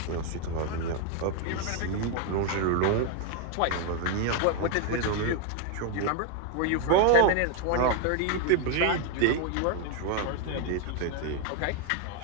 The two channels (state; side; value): different; both; correlation 0.01